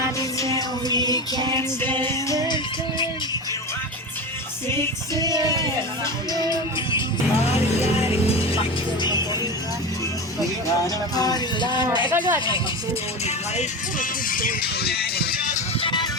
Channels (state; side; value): normal; both; correlation 0.24